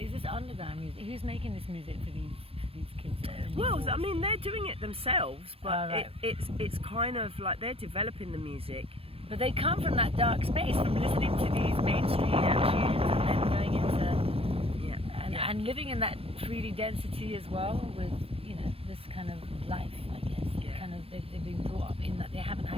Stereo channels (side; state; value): left; late; 0.28 ms